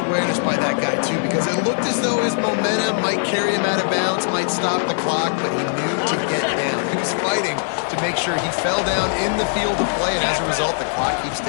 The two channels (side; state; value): right; silent; 65 dB below the other